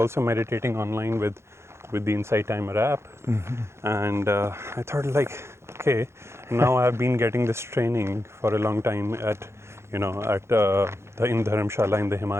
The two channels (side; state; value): left; late; 0.13 ms